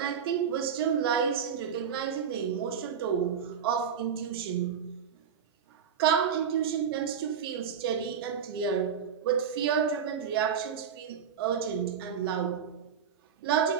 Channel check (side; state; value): left; quieter; 7.4 dB